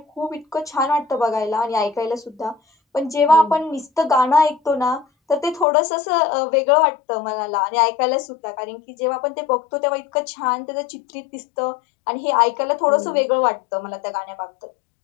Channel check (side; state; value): right; drops out; at 5.7 s